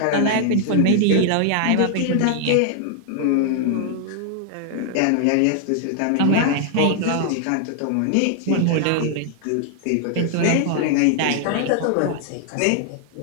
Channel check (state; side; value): different; both; correlation 0.00